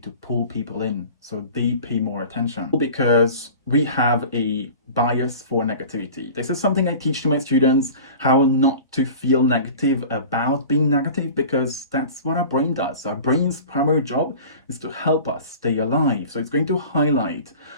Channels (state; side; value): inverted; both; correlation -0.39